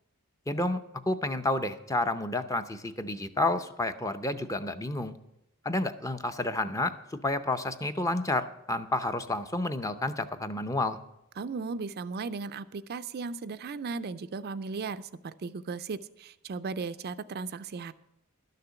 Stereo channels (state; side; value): normal; both; correlation 0.41